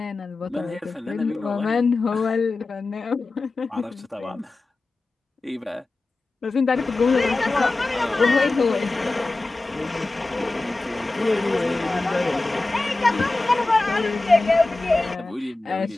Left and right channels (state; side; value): quieter; right; 3.2 dB